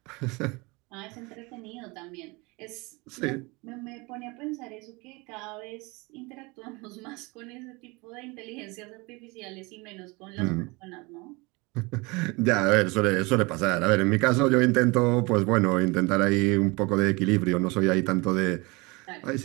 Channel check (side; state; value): left; quieter; 26.0 dB